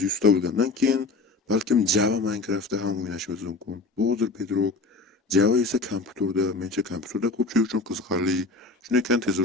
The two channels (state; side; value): quieter; right; 3.6 dB